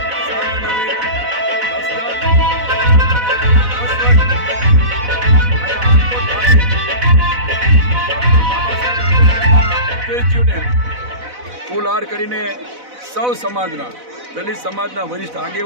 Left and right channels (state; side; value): late; left; 4.0 ms